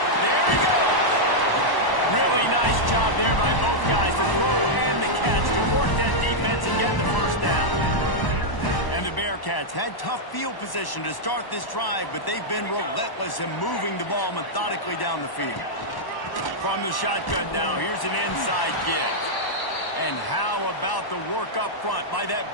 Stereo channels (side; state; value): right; late; 1.1 ms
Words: There he goes. Really nice job there by both guys to throw and the catch to work that defense and get the first down. And And the Bearcats had tough field position to start this drive, but they've been relentless in moving the ball methodically down the field. From the shotgun now, here's an inside give. And how about the work up front by that